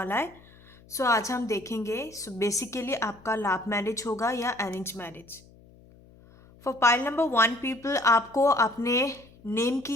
है। सो आज हम देखेंगे बेसिकली आपका लव मैरिज होगा या arrange marriage. For pile number 1 people, आपको अपने नेम की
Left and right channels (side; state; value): left; noise; hum, 25 dB below the sound